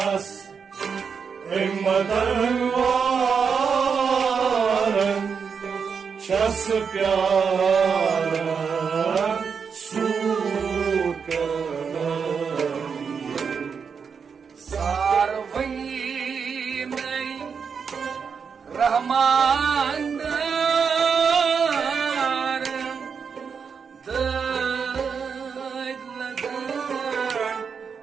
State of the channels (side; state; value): left; quieter; 6.2 dB